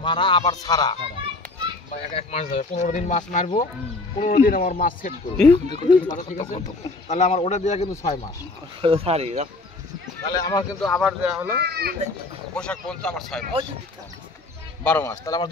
মারা আবার ছাড়া 1 মাস যাবে। 15 দিন মাছ মারবো, 15 দিন আমার মাছ সেট করবো। ঠিক আছে, তাহলে আমার ওটা দেওয়া কিন্তু 6 মাস। তাহলে আমার কিন্তু আবার দেওয়া হলো বৈশাখ পর্যন্ত আমার 6 মাস, 12 মাস। তাহলে আমার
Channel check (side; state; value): right; quieter; 3.2 dB